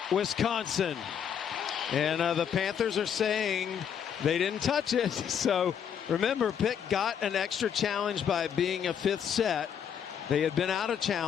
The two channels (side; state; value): right; quieter; 8.2 dB